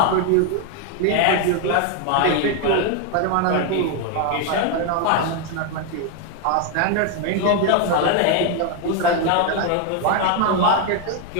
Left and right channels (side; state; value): both; different; correlation 0.01